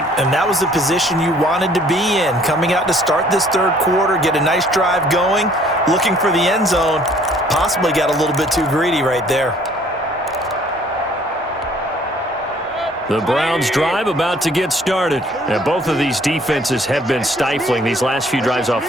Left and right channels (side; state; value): both; normal; correlation 0.58